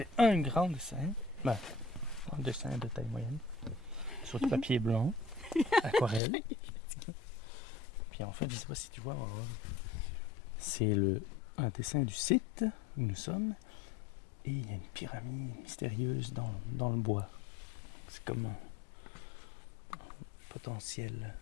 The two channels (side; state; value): right; drops out; at 6.2 s